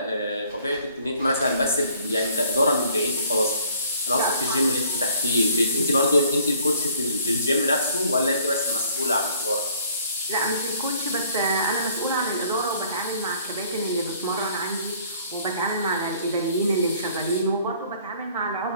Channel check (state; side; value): inverted; both; correlation -0.58